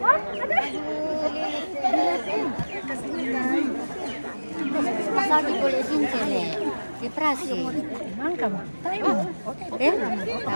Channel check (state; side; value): inverted; both; correlation -1.00